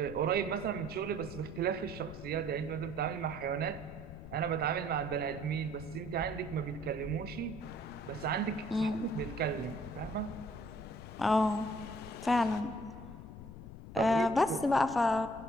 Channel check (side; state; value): left; noise; rumble, 13 dB below the sound